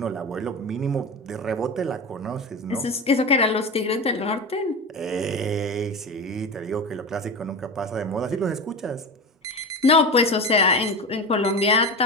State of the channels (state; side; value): normal; both; correlation 0.25